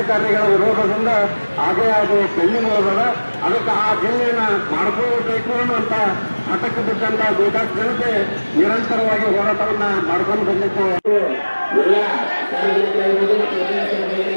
ವಿರೋಧದಿಂದ ಹಾಗೆ ಅದು ಪೆಂಡಿಂಗ್ ಹೋದ. ಅದಕ್ಕೆ ಆ ಜಿಲ್ಲೆಯನ್ನ ಮಾಡ್ಕೋಬೇಕು ಅನ್ನುವಂತ ಹಠಕ್ಕೆ ಬಿಟ್ಟಂತ ಗೋಕಾಕ್ ಜನತೆ ನಿರಂತರವಾಗಿ ಹೋರಾಟವನ್ನ ಮಾಡ್ಕೊಂಡು ಬಂದಿತ್ತು. ಎಲ್ಲ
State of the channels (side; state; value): both; inverted; correlation -1.00